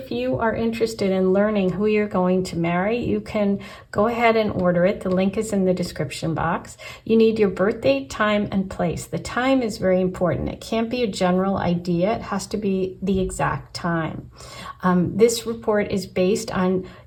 you are interested in learning who you're going to marry, you can go ahead and order it. The link is in the description box. You need your birth date, time, and place. The time is very important. It can't be a general idea. It has to be the exact time. This report is based on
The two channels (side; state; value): both; identical; correlation 1.00